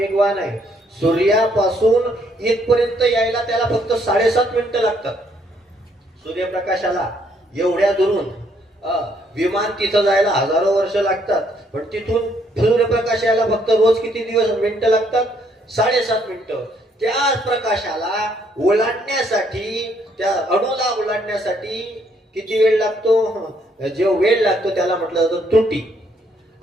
आहे. सूर्यापासून इथपर्यंत यायला त्याला फक्त 7.5 मिनिटं लागतात. सूर्यप्रकाशाला एवढ्या दुरून विमान तिथं जायला हजारो वर्ष लागतात. पण तिथून सूर्यप्रकाश यायला फक्त रोज किती मिनिटं लागतात? 7.5 मिनिटं. त्या प्रकाशाला ओलांडण्यासाठी, त्या अणूला ओलांडण्यासाठी किती वेळ लागतो? जो वेळ लागतो त्याला म्हटलं जातं त्रुटी.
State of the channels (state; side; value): normal; both; correlation 0.69